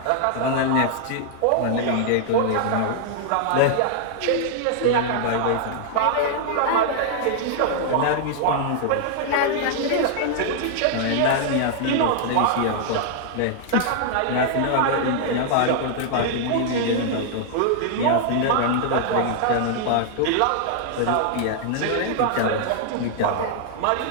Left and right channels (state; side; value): different; both; correlation 0.00